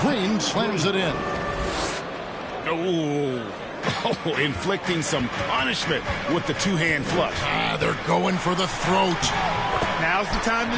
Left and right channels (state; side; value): identical; both; correlation 1.00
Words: Green slams it in. Oh, inflicting some punishment with the two-hand flush. They're going for the throat. Now's the time